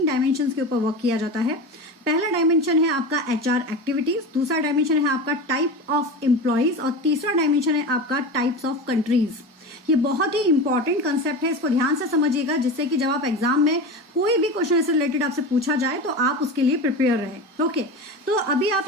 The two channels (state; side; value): normal; both; correlation 0.26